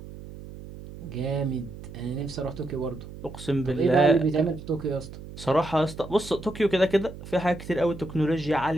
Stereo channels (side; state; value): right; noise; hum, 14 dB below the sound